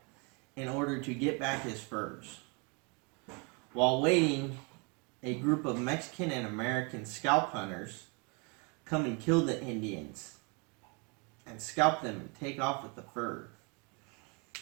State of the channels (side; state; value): left; quieter; 32.2 dB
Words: in order to get back his furs. While waiting, a group of Mexican and American scalp hunters come and kill the Indians and scalp them and take off with the fur.